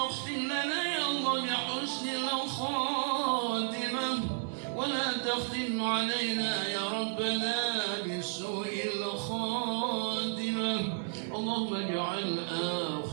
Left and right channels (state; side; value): silent; left; digital silence